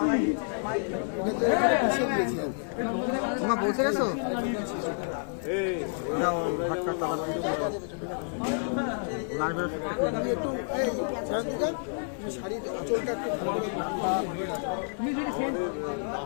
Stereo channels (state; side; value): silent; right; 58 dB below the other